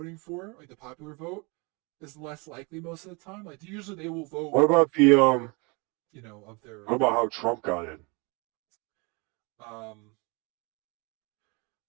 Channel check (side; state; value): left; quieter; 29.5 dB